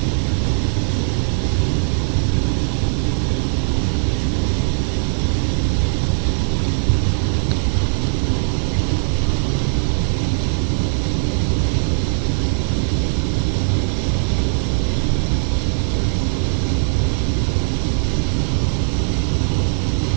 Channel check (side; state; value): left; silent; digital silence